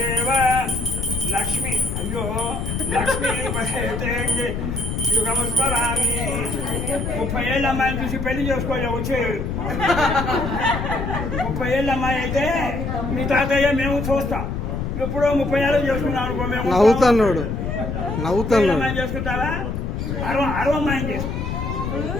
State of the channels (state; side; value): noise; left; rumble, 3 dB below the sound